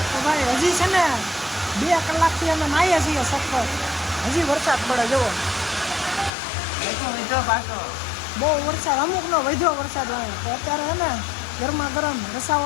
તો ભાઈ હજી છે ને 2 કલાકથી અમે નાહીએ છીએ સખત, હજી વરસાદ પડે જુઓ. મીઠો પાછો બહુ વરસાદ, અમુકનો વધ્યો વરસાદ આવે. તો અત્યારે છે ને ગરમા ગરમ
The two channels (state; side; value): drops out; right; at 6.3 s